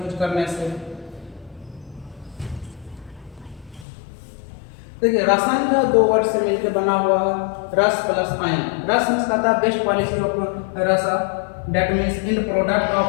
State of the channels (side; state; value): right; drops out; at 3.9 s